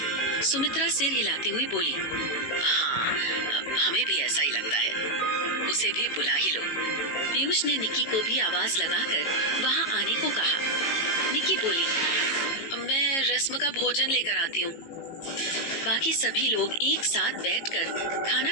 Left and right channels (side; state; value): right; late; 18 ms